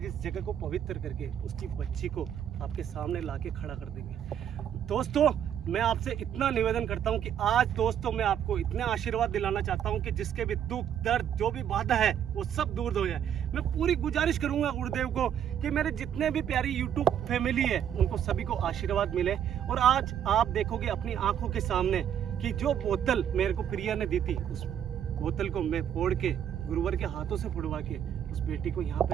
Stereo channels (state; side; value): quieter; left; 9.4 dB